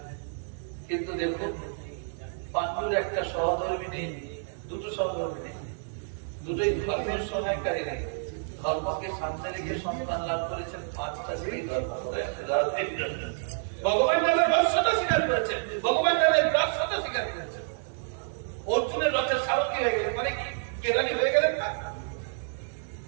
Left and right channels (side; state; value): left; silent; 59 dB below the other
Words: কিন্তু দেখুন পাণ্ডুর একটা সহধর্মী নেই, দুটো সহধর্মী নেই, দুটোই ধর্মের সহায়কারী নেই। ধর্মকে সামনে রেখে সন্তান লাভ করেছেন 5টা সেই ধর্ম করে। ভগবান তাদের রহস্যতা স্বীকার করেছেন, ভগবান তাদের রহস্যতা স্বীকার করেছেন। অর্জুনের রথের সারথী হয়ে গেলেন, মানে কি কেরানি হয়ে গেলেন না?